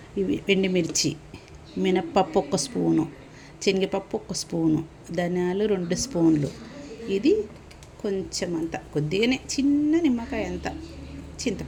ఇవి ఎండుమిర్చి, మినప్పప్పు 1 స్పూను, శనగపప్పు 1 స్పూను, ధనియాలు 2 స్పూన్లు. ఇది కొంచెం అంత కొద్దిగానే చిన్న నిమ్మకాయ అంత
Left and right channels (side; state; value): both; identical; correlation 1.00